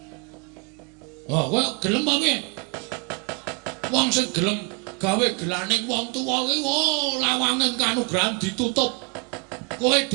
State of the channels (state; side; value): quieter; left; 32.1 dB